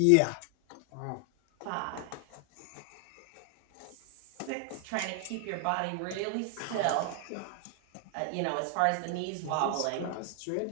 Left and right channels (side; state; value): both; different; correlation 0.00